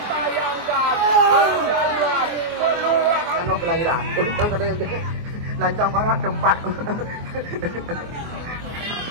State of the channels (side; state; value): left; late; 24 ms